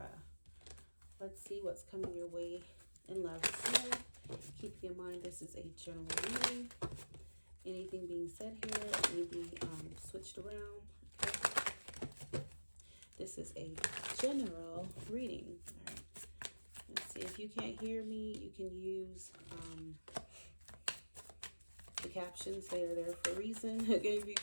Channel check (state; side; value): inverted; both; correlation -1.00